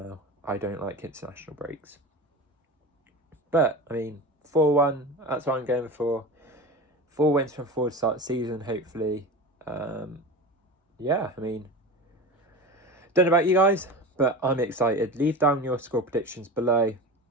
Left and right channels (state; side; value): normal; both; correlation 0.29